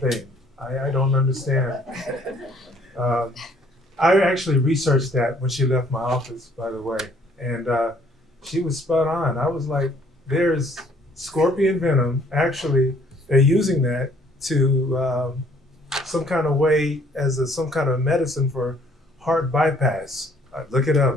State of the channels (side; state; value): both; normal; correlation 0.61